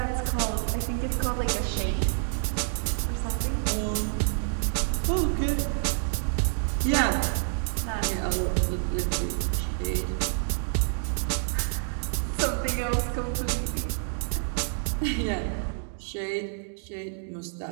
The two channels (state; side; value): silent; left; digital silence